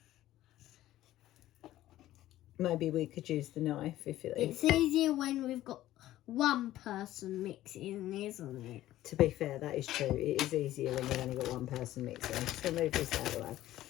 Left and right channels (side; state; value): right; quieter; 14.4 dB